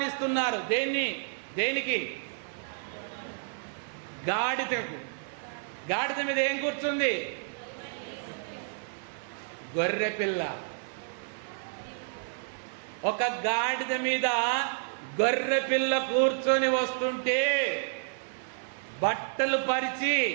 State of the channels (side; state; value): left; silent; 58 dB below the other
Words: దేనికి? గాడిదకు. గాడిద మీద ఏం కూర్చుంది? గొర్రె పిల్ల. ఒక గాడిద మీద గొర్రె పిల్ల కూర్చొని వస్తుంటే బట్టలు పరిచి